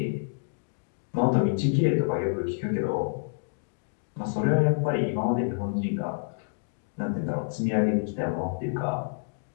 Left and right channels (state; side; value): silent; right; digital silence